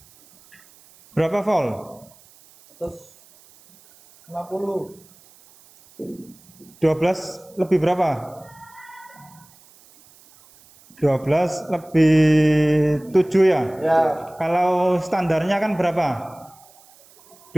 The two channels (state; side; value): noise; right; hiss, 27 dB below the sound